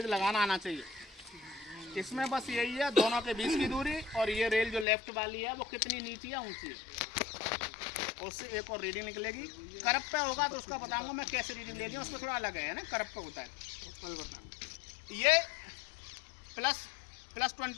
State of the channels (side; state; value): right; drops out; at 4.9 s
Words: लगाना आना चाहिए। इसमें बस यही है दोनों के बीच की दूरी, और ये रेल जो लेफ्ट वाली है वो कितनी नीची है, ऊंची है। उससे एक और रीडिंग निकलेगी। करप पे होगा तो उसका बताऊंगा मैं कैसे रीडिंग लेनी है, उसमें थोड़ा अलग है ना, करप पे होता है। ये प्लस